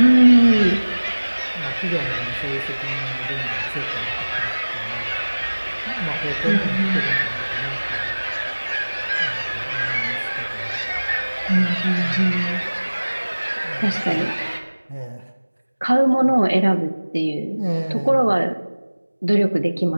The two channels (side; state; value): both; inverted; correlation -1.00